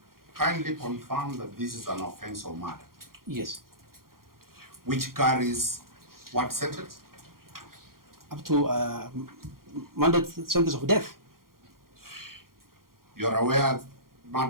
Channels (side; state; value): left; late; 0.92 ms